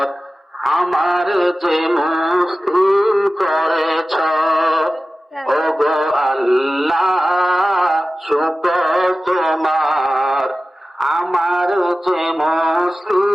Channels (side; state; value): both; normal; correlation 0.95